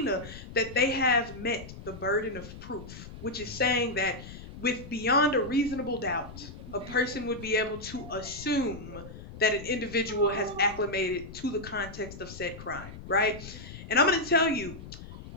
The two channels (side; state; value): left; noise; rumble, 13 dB below the sound